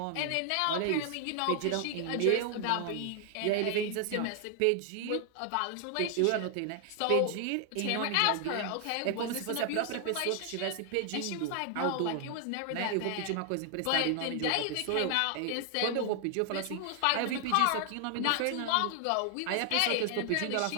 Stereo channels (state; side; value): different; both; correlation 0.00